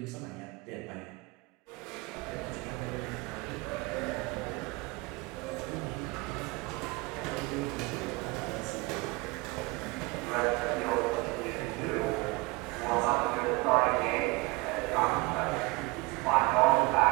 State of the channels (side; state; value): left; quieter; 23.8 dB